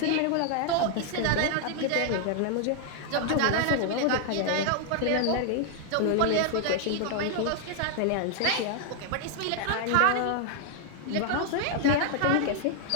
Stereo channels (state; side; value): different; both; correlation 0.00